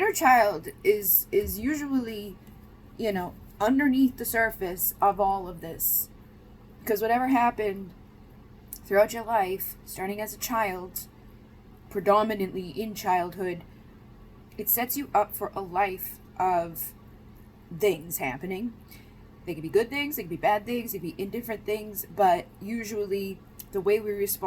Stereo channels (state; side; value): identical; both; correlation 1.00